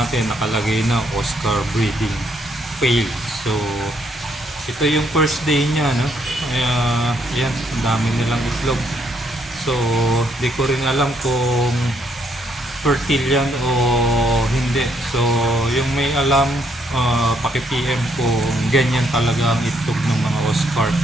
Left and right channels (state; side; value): normal; both; correlation 0.72